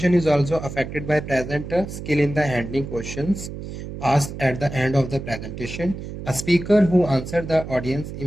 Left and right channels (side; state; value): right; noise; hum, 9 dB below the sound